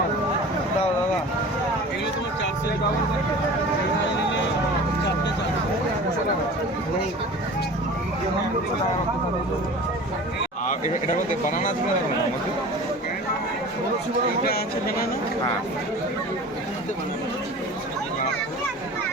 হবে। দাও দাদা, এগুলো তোমার 400 টাকা নিলে 4টে 400। এটা বলতে বানানা আছে না আমাকে? এটা আছে বানানা। হ্যাঁ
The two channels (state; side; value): normal; both; correlation 0.39